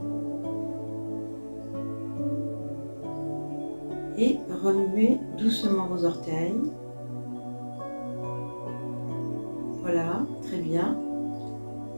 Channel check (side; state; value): both; inverted; correlation -1.00